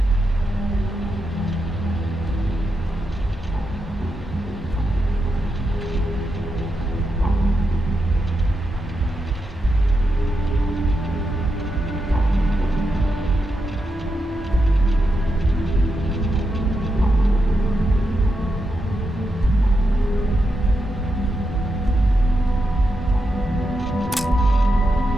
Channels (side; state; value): both; normal; correlation 0.85